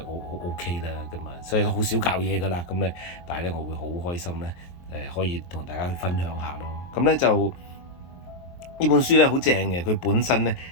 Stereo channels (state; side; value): late; right; 23 ms